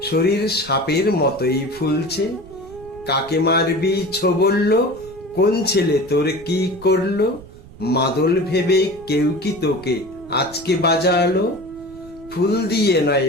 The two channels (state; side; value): noise; right; rumble, 20 dB below the sound